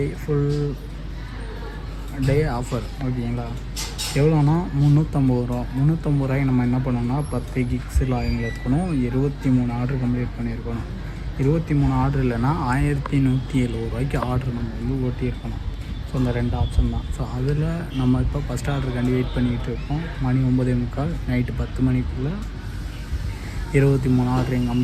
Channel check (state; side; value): identical; both; correlation 1.00